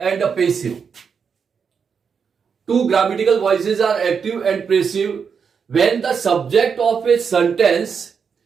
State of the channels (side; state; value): left; quieter; 6.3 dB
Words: passive. Two grammatical voices are active and passive when the subject of a sentence